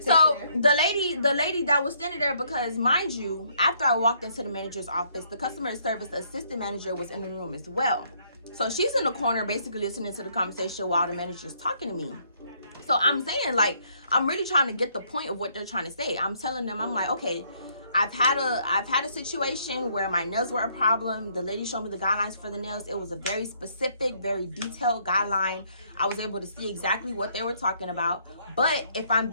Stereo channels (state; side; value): inverted; both; correlation -0.68